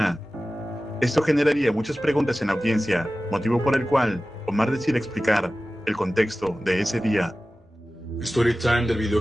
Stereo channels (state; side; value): normal; both; correlation 0.96